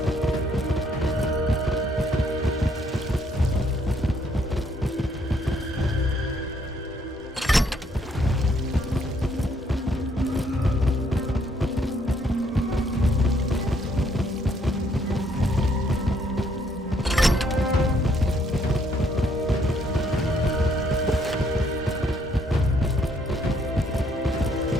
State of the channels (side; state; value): both; normal; correlation 0.69